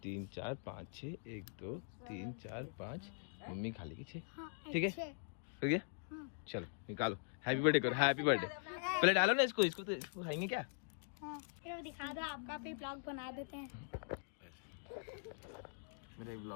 3 4 5 6 1 2 3 4 5। मम्मी खा लेगी 6। ठीक है, हो गया। चलो निकालो, हैप्पी बर्थडे करो। हैप्पी बर्थडे पहले डालो ना इसको। इसको खाएंगे क्या? ये दिखा दो, आपका भी ब्लॉग बना देते हैं। मेरा एक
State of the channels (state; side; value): silent; right; digital silence